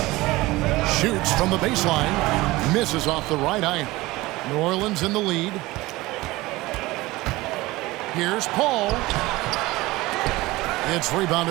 Shoots from the baseline. Misses off the right iron. New Orleans in the lead. Here's Paul. It's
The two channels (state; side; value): quieter; left; 19.9 dB